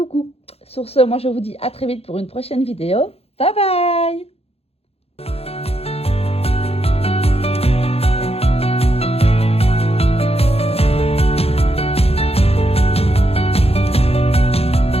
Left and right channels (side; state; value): right; late; 0.29 ms